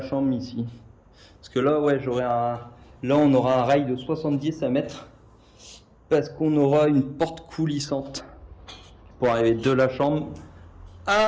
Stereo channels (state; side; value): identical; both; correlation 1.00